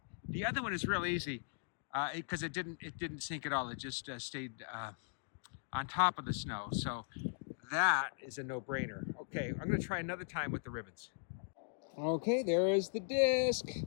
the other one is real easy. Because it didn't sink at all. It just stayed on top of the snow. So that is a no-brainer. Okay, I'm going to try another time with the ribbons. Okay, there is the disc.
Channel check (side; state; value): right; silent; digital silence